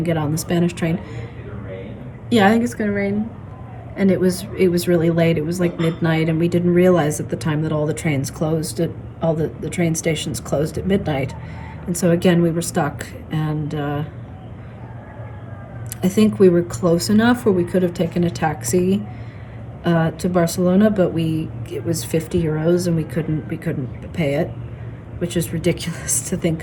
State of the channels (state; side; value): identical; both; correlation 1.00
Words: get on the Spanish train. Yeah, I think it's gonna rain. And it was really late. It was like midnight, and we didn't realize at the time that all the trains closed all the train stations closed at midnight. And so again, we were stuck, and I think we were close enough where we could have taken a taxi to Barcelona, but it was 50 euros, and we couldn't pay it, which is ridiculous to